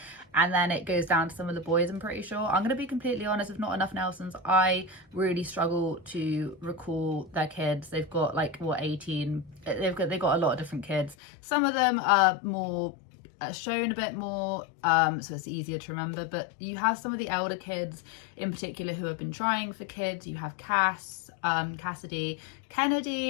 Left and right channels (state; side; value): drops out; right; at 11.2 s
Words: and then it goes down to some of the boys, I'm pretty sure. I'm going to be completely honest, with Not Enough Nelsons, I really struggle to recall their kids. They've got like, what, 18? They've got a lot of different kids. Some of them are more shown a bit more, so it's easier to remember, but you have some of the elder kids in particular who have been trying for kids. You have Cass, Cassidy,